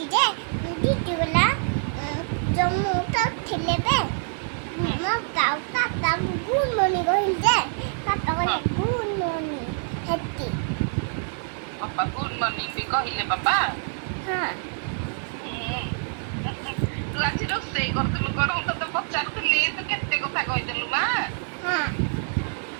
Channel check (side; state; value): left; silent; 61 dB below the other